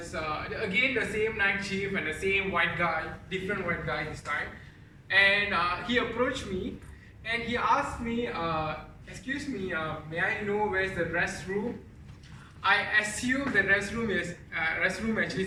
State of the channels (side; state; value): both; identical; correlation 1.00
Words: again the same night chief and the same white guy, different white guy this time. And he approached me and he asked me, excuse me, may I know where's the restroom? I assume the restroom actually